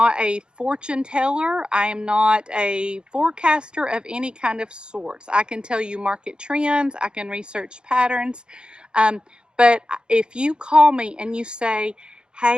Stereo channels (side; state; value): left; late; 0.050 ms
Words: a fortune teller. I am not a forecaster of any kind of sorts. I can tell you market trends. I can research patterns. But if you call me and you say,